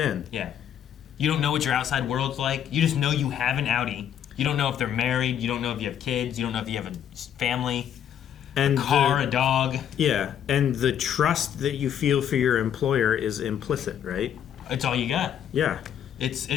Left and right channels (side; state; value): right; quieter; 9.5 dB